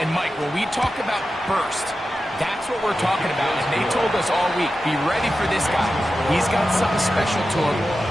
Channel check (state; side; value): normal; both; correlation 0.92